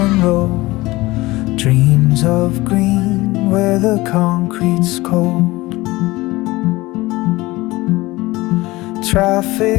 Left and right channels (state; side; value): quieter; right; 20.0 dB